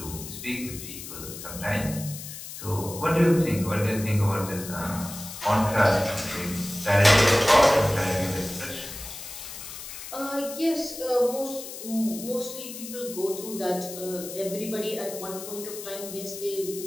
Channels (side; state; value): left; noise; hiss, 11 dB below the sound